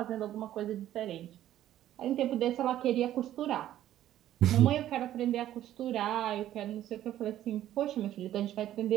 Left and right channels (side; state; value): left; quieter; 12.5 dB